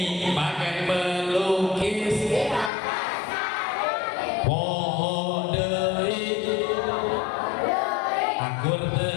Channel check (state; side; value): drops out; right; at 2.7 s